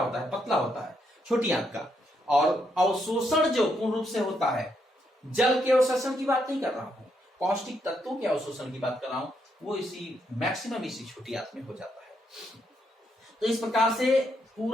है, पतला होता है छोटी आंत का। और अवशोषण जो पूर्ण रूप से होता है, जल के अवशोषण की बात नहीं कर रहा हूं, पौष्टिक तत्वों के अवशोषण की बात कर रहा हूं, वो इसी मैक्सिमम इसी छोटी आंत में हो जाता है। तो इस प्रकार से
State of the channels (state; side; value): normal; both; correlation 0.77